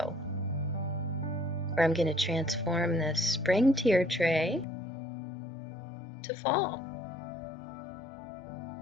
where I'm going to transform this spring tier tray to fall.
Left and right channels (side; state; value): right; drops out; at 4.7 s